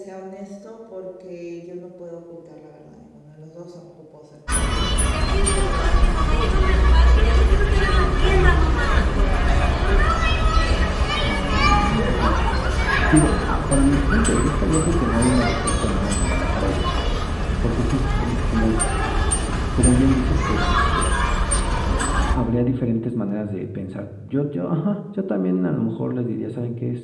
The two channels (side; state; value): both; identical; correlation 1.00